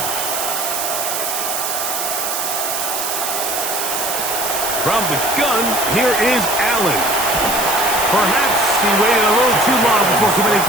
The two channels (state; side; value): noise; right; hiss, 2 dB below the sound